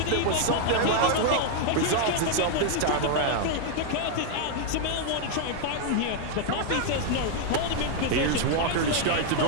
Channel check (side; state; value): both; different; correlation 0.00